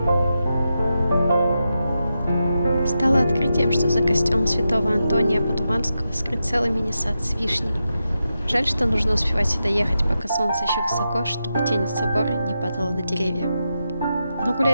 Стало открытием, что за костелом святого Антония Падуанского скрыт целый мини-сад с вишней. Жаль, что нужно успевать сюда ехать, пока солнце еще высоко, чтобы тень от собора не падала на деревья. Но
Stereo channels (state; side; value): inverted; both; correlation -0.88